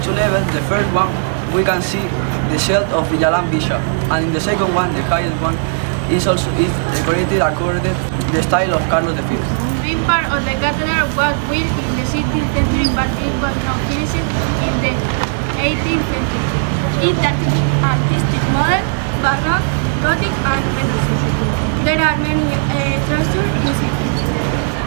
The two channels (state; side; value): silent; left; digital silence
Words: two levels, the first one we can see the shield of Villalan Bishop, and in the second one, the highest one, is decorated according to the style of Carlos V. This part of the cathedral was built in the 16th century, but it was not finished in the 18th century. It is artistic modern, Baroque, Gothic, and Renaissance. There are many treasures in it.